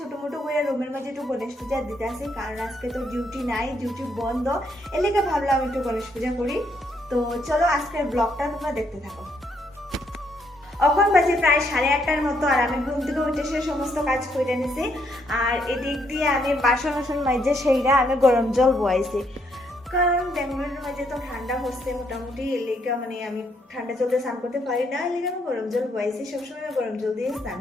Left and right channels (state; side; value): normal; both; correlation 0.73